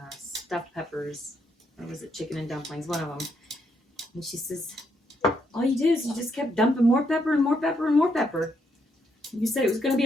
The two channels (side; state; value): both; normal; correlation 0.76